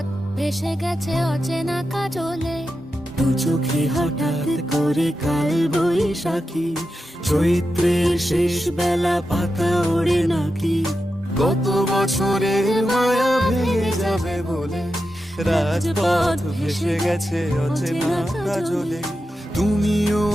ভেসে গেছে অচেনা কাজলে। দু চোখে হঠাৎ করে কাল বৈশাখী, চৈত্রের শেষ বেলা পাতা ওড়ে নাকি, গত বছরের মায়া ভেঙে যাবে বলে, রাজপথ ভেসে গেছে অচেনা কাজলে। তুমিও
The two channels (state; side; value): normal; both; correlation 0.89